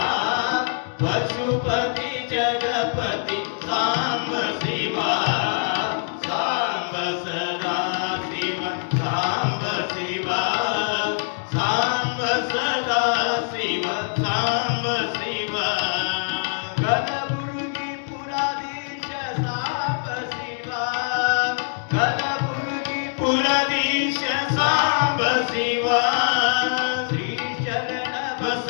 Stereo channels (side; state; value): right; silent; digital silence